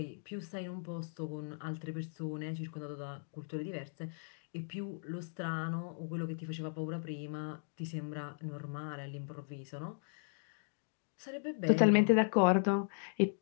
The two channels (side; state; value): right; silent; digital silence